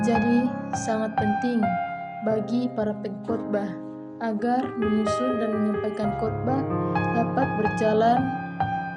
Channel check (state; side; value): identical; both; correlation 1.00